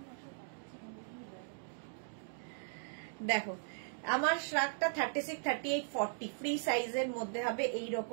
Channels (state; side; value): silent; left; digital silence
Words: দেখো আমার শ্রাগটা 36, 38, 40 ফ্রি সাইজের মধ্যে হবে।